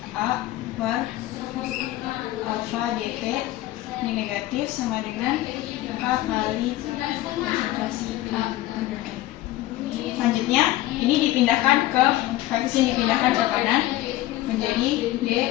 A per alfa dt ini negatif sama dengan K kali konsentrasi A order N. Selanjutnya ini dipindahkan ke koefisien dipindahkan ke kanan menjadi D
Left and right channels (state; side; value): quieter; right; 15.8 dB